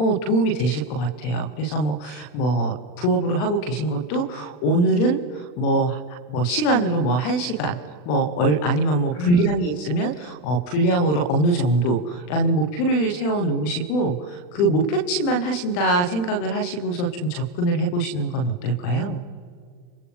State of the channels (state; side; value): late; right; 40 ms